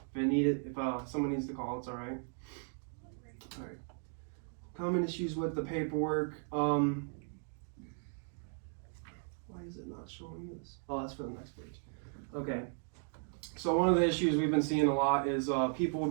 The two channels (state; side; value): silent; left; 54 dB below the other